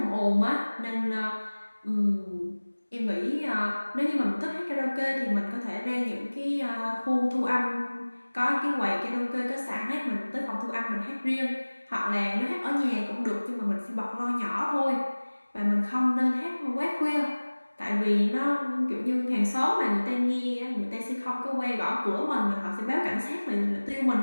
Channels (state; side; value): inverted; both; correlation -1.00